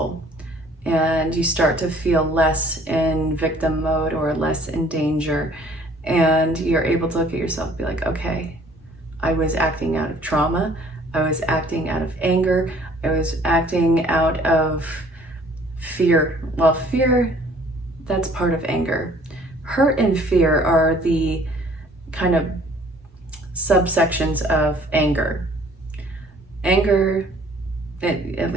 and you start to feel less in victim mode or less in danger, and you're able to look at yourself and be like, okay, I was acting out of trauma, I was acting out of anger, I was acting out of fear. Well, fear, that's part of anger. Hurt and fear are the kind of subsections of anger. Anger, it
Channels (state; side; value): normal; both; correlation 0.56